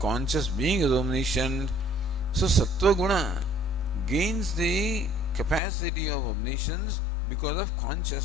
being, is omniscient. So Sattva Guna gains the capacity of omniscience because of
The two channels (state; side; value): drops out; right; at 5.6 s